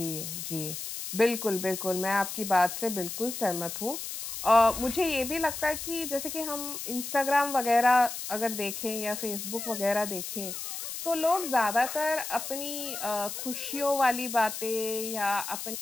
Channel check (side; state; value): left; noise; hiss, 7 dB below the sound